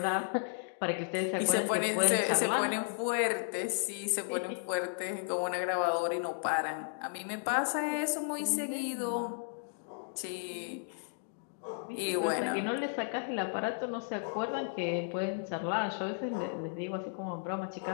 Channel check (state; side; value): silent; right; digital silence